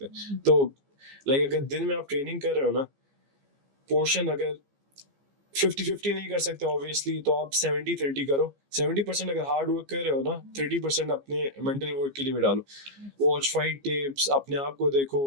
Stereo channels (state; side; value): late; left; 15 ms